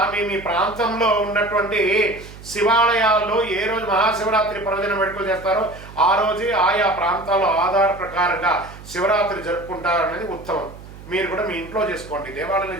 మీ ప్రాంతంలో ఉన్నటువంటి శివాలయాల్లో ఏ రోజు మహాశివరాత్రి పర్వదినం వేడుకలు చేస్తారో ఆ రోజే ఆయా ప్రాంతాల్లో ఆధార ప్రకారంగా శివరాత్రి జరుపుకుంటారనేది ఉత్తమం. మీరు కూడా మీ ఇంట్లో చేసుకోండి, దేవాలయంలో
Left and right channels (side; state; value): right; noise; hum, 17 dB below the sound